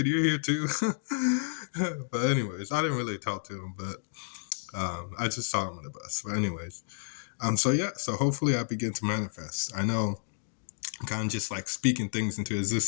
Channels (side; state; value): right; silent; digital silence